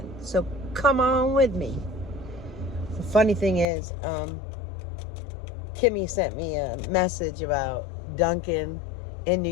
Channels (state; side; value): drops out; right; at 3.7 s